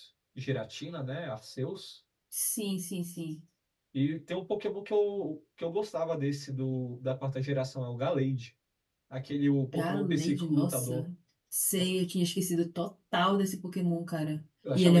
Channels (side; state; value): both; identical; correlation 1.00